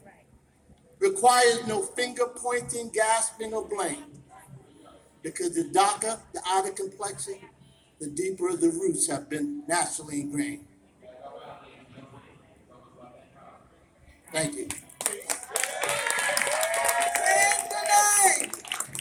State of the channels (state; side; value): identical; both; correlation 1.00